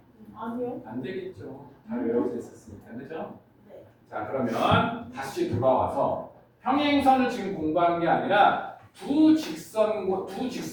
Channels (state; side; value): identical; both; correlation 1.00